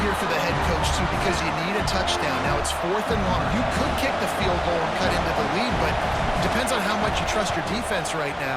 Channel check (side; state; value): both; identical; correlation 1.00